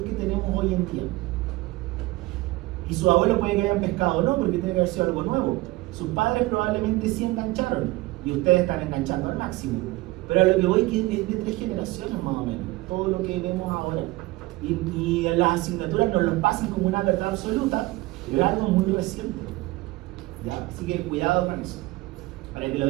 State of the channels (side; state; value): left; quieter; 20.1 dB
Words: que tenemos hoy en día. Y sus abuelos puede que hayan pescado o no, porque tiene que haber sido algo nuevo. Sus padres probablemente sí engancharon, y ustedes están enganchando al máximo. Pero a lo que voy es de 3 generaciones más o menos, todo lo que vemos ahora. Y las asignaturas nos lo pasan como una verdad absoluta, pero algo muy reciente. ¿Ya? Así que cuidado con eso, para que lo